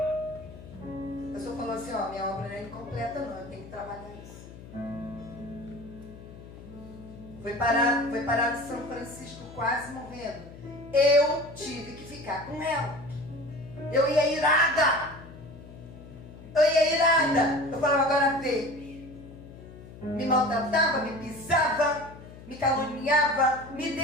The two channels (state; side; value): noise; left; hum, 16 dB below the sound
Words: O Senhor falou assim, ó, minha obra não é incompleta não, eu tenho que trabalhar isso. Foi parar em São Francisco quase morrendo. Eu tive que ficar com ela. Eu ia irada. Eu falava, agora vê. me maltratava, me pisava, me caluniava, me